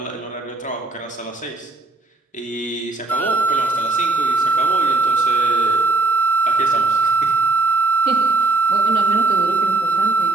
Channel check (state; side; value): quieter; left; 3.4 dB